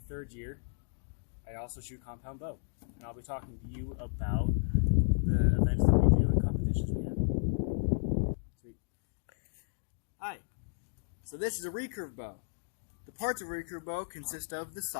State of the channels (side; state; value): right; silent; digital silence